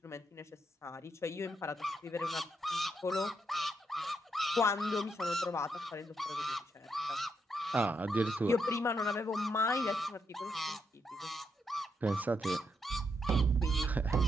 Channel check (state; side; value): normal; both; correlation 0.79